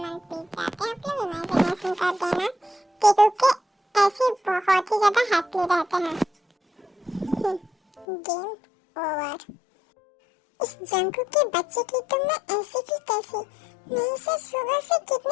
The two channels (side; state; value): right; drops out; at 8.1 s